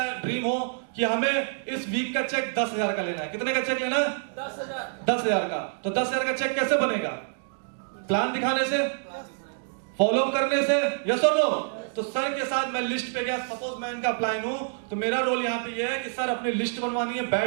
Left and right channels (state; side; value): silent; left; digital silence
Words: ड्रीम हो कि हमें इस वीक का चेक 10,000 का लेना है। कितने का चेक लेना है? 10,000 का। तो 10,000 का चेक कैसे बनेगा? प्लान दिखाने से, फॉलो करने से, यस और नो? तो सर के साथ मैं लिस्ट पे गया, सपोज मैं इनका अप्लाइन हूं, तो मेरा रोल यहाँ पे ये है कि सर अपनी लिस्ट बनवानी है,